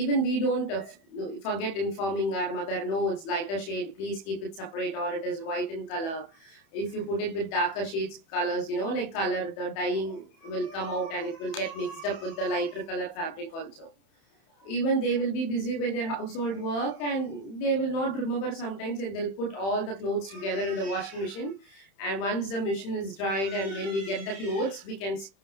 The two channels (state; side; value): late; right; 31 ms